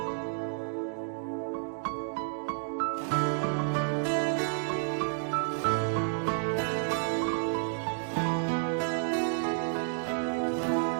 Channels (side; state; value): left; silent; digital silence